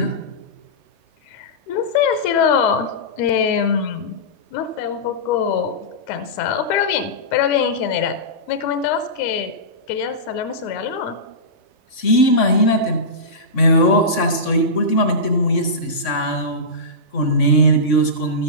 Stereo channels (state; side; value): late; right; 3.6 ms